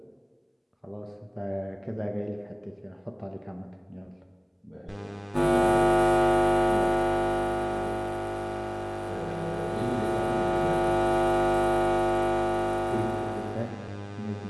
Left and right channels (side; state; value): both; identical; correlation 1.00